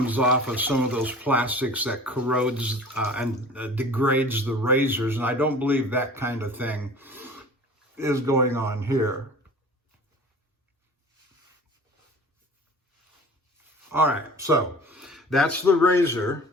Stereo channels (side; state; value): both; normal; correlation 0.42